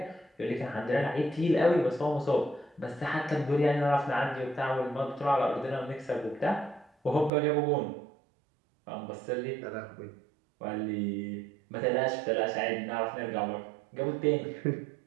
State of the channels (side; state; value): left; drops out; at 7.3 s